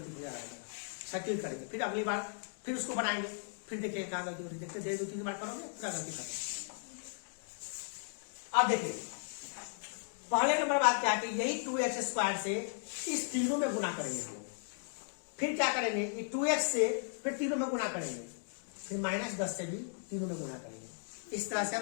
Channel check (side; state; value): right; silent; digital silence